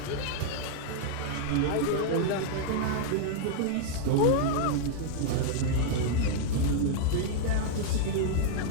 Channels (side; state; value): both; different; correlation -0.01